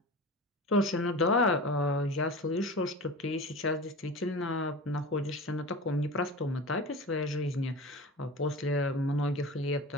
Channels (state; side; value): normal; both; correlation 0.32